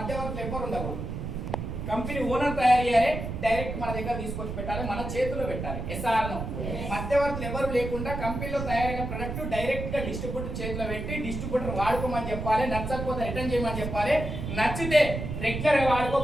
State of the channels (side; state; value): right; noise; rumble, 5 dB below the sound